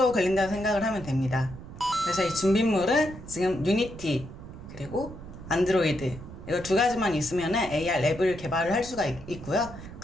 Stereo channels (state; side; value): noise; right; rumble, 14 dB below the sound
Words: 걸린다고 생각을 하면 됩니다. 그래서 이 준비물은 지금 유니티, 그리고 안드로이드, 이거 두 가지만 있으면 AR 랩을 개발을 할 수가 있고요.